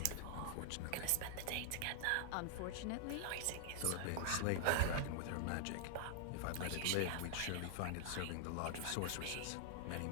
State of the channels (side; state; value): both; different; correlation -0.01